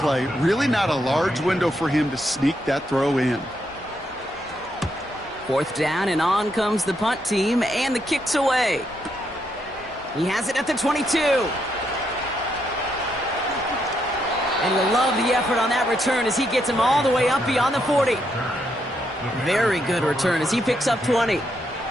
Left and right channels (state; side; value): normal; both; correlation 0.78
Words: Really not a large window for him to sneak that throw in. 4th down, and on comes the punt team, and the kick's away. He has it at the 22. And you'll love the effort on that return as he gets him all the way up beyond the 40. Very good return as he picks up 20.